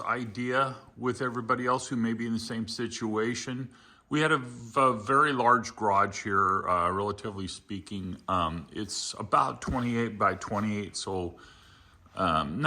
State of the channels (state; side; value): identical; both; correlation 1.00